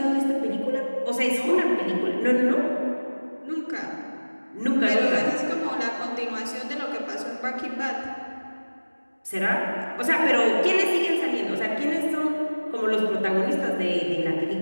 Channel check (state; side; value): inverted; both; correlation -1.00